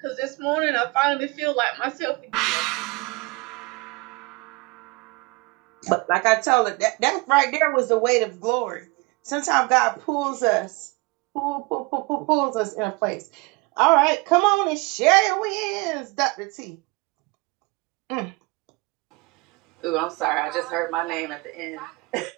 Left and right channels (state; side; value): quieter; left; 25.9 dB